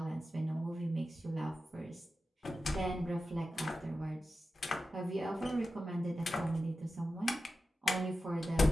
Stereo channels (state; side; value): normal; both; correlation 0.92